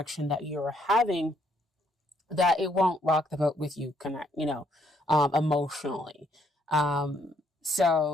that you're having, that it won't rock the boat with you, emotionally.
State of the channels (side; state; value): both; normal; correlation 0.70